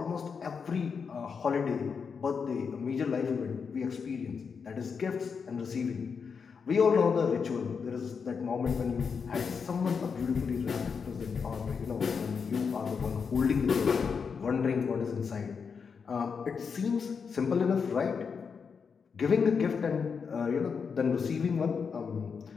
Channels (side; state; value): right; quieter; 5.9 dB